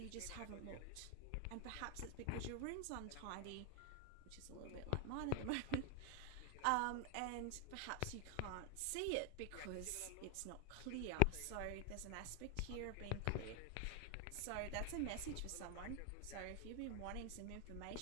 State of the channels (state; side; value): different; both; correlation 0.00